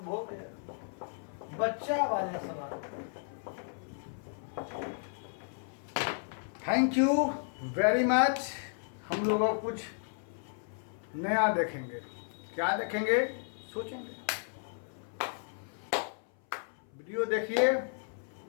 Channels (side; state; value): right; silent; 55 dB below the other